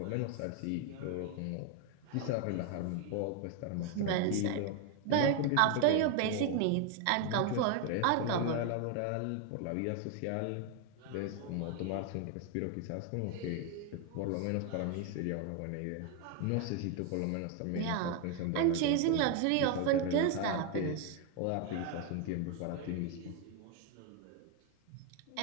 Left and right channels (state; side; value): different; both; correlation 0.01